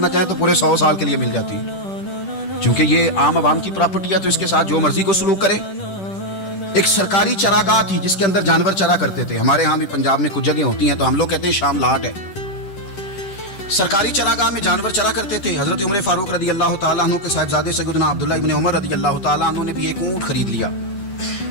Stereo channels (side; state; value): right; late; 10 ms